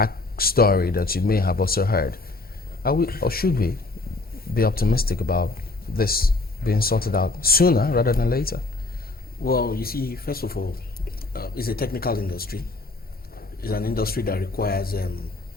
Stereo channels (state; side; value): quieter; right; 3.2 dB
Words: that you may have also heard, are we or should we be optimistic about this being sorted out sooner rather than later? Well, you see, first of all, it's a technical industry. It's an industry that requires